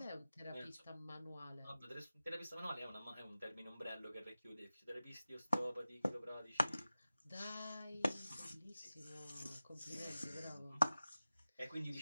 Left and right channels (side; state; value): both; inverted; correlation -0.96